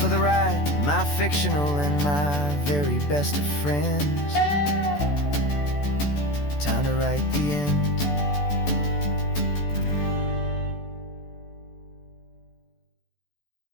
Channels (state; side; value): late; right; 14 ms